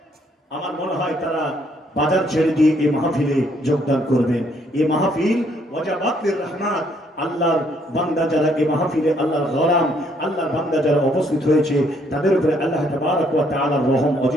আমার মনে হয় তারা বাজার ছেড়ে দিয়ে এই মাহফিলে যোগদান করবেন। এই মাহফিল ওয়াজাবাতুর রহমাত, আল্লাহর বান্দা যারা এই মাহফিলে, আল্লাহর গোলাম, আল্লাহর বান্দা যারা উপস্থিত হয়েছে, তাদের উপরে আল্লাহ তাবারক ওয়া তাআলার রহম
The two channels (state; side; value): normal; both; correlation 0.68